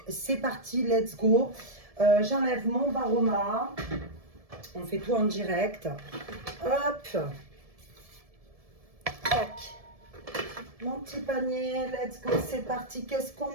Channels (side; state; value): left; late; 1.7 ms